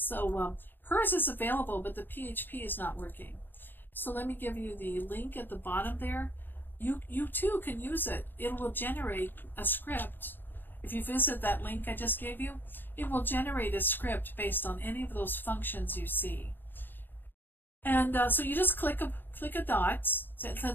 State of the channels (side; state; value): right; late; 0.094 ms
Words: hers is available, but the PHP is not working. So let me give you the link at the bottom there. You too can use it. It will generate a script. If you visit that link I just gave you, it will generate a script based on any of those functions you see. And so you just click a dot.